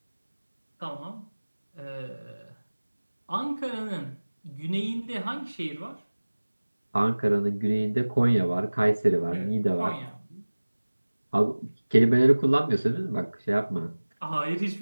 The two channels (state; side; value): inverted; both; correlation -1.00